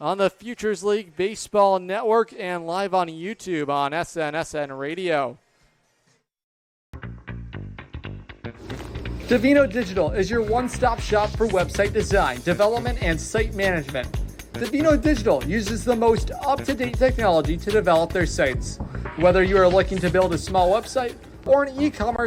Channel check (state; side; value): identical; both; correlation 1.00